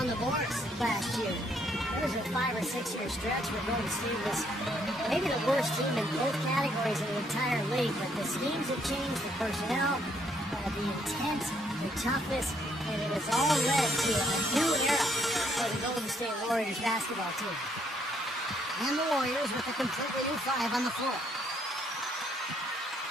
the boards last year. There was a 5 or 6 year stretch where Golden State was maybe the worst team in both categories in the entire league, but the schemes have changed, the personnel, the intent, the toughness, and it has all led to a new era for the Golden State Warriors basketball team. And the Warriors with a completely new 5 on the floor.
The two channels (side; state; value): both; normal; correlation 0.69